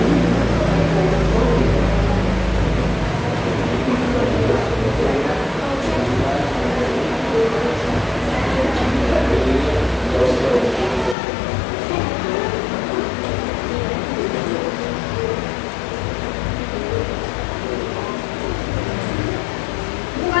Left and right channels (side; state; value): right; drops out; at 11.2 s